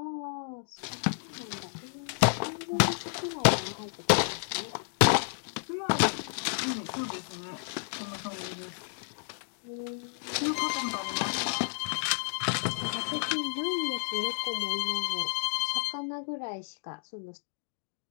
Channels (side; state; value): right; silent; digital silence